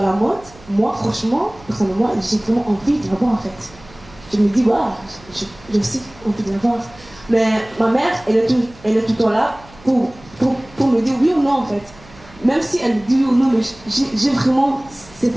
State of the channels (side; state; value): right; noise; hum, 23 dB below the sound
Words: la mode, moi, franchement, personnellement, j'ai vraiment envie de l'avoir en fait. Je me dis, waouh, j'ai aussi envie de l'avoir. Mais ma mère, elle est tout le temps là pour me dire oui ou non en fait. Même si elle me dit oui ou non, mais j'ai vraiment cette